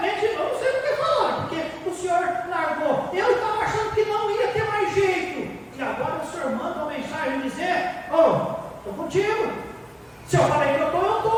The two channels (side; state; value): both; identical; correlation 1.00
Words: eu não sei o que falaram. Porque o Senhor largou. Eu estava achando que não ia ter mais jeito. E agora o Senhor manda uma mensagem dizer: estou contigo. Se eu falei que eu